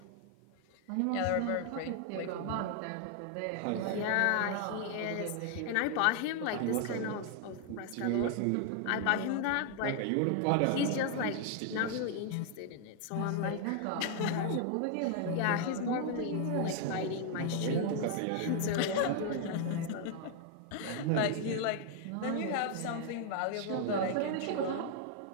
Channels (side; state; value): both; different; correlation 0.00